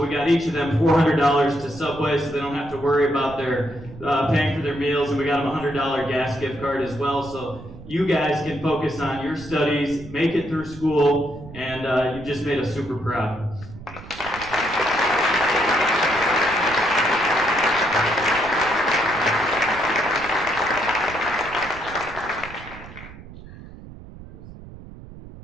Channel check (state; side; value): noise; right; rumble, 16 dB below the sound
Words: we got each of them $400 to Subway, so they don't have to worry about their paying for their meals, and we got them a $100 gas gift card as well, so you guys can focus on your studies, make it through school, and you just made us super proud.